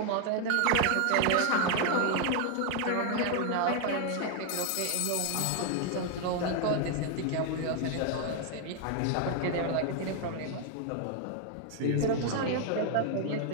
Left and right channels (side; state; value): both; different; correlation 0.00